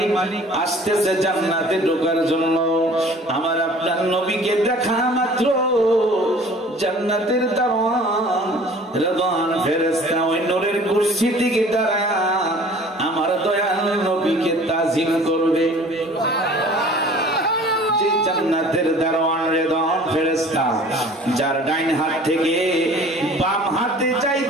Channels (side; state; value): both; normal; correlation 0.48